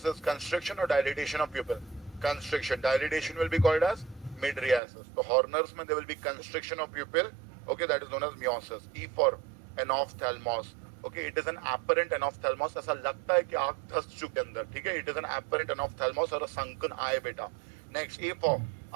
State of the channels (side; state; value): left; drops out; at 4.8 s